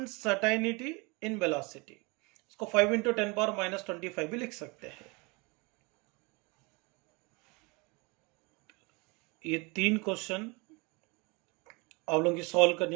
in velocity, इसको 5 इंटू 10 पावर माइनस 25 भी लिख सकते हैं। ये 3 क्वेश्चन आप लोगों की सॉल्व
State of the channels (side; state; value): left; quieter; 27.8 dB